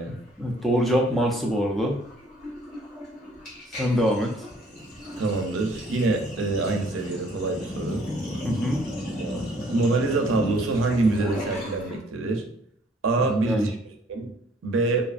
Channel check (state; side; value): normal; both; correlation 0.59